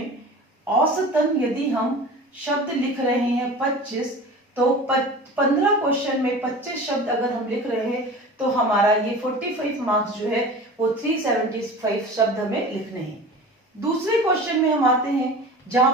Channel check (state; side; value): normal; both; correlation 0.37